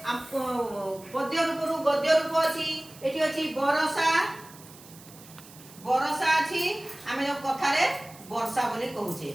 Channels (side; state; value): right; noise; hiss, 20 dB below the sound